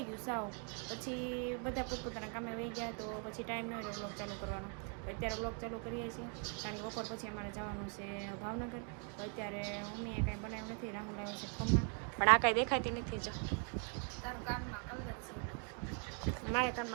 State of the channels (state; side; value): quieter; left; 39.9 dB